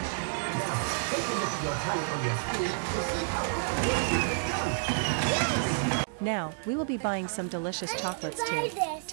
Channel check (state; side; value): silent; left; digital silence